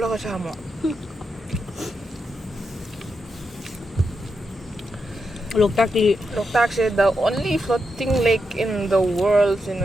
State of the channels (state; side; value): normal; both; correlation 0.85